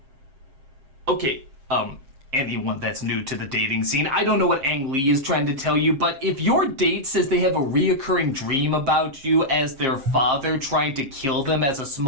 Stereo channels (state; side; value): late; left; 7.5 ms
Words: Okay, anyone that's new to the dating scene, I don't know what Ang Lee is trying to tell you, but if your date says they have a reoccurring dream about you as their father trying to kill them as a